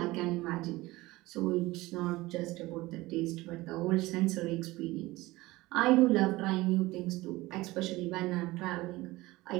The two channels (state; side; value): quieter; left; 19.7 dB